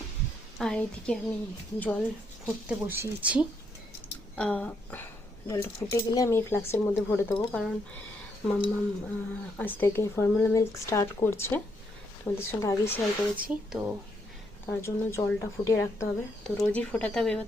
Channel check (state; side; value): normal; both; correlation 0.76